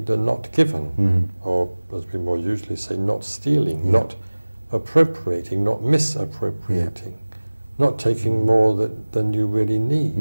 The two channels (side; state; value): both; inverted; correlation -1.00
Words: not given, or as we more usually say, not stealing, not appropriating, not misappropriating, not taking more than you really